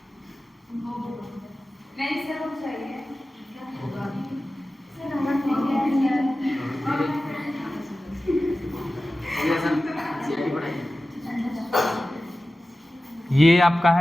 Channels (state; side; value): normal; both; correlation 0.95